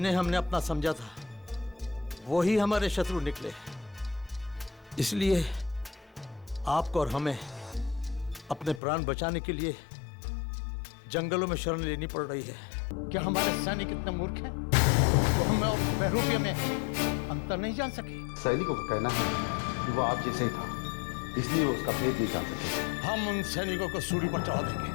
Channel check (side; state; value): right; drops out; at 8.8 s